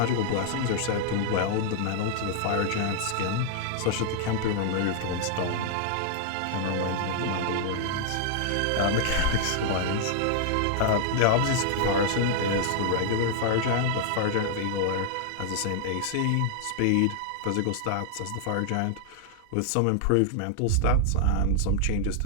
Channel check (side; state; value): both; different; correlation -0.01